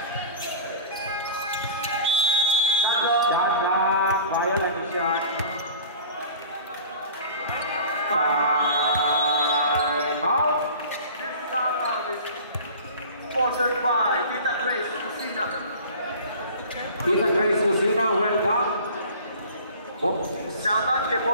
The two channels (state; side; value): inverted; both; correlation -0.41